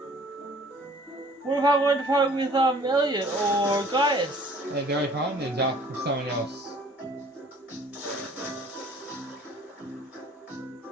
What if I wanted to partner with Elliot or Gaius? They're only partners up with someone else.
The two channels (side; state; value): both; normal; correlation 0.54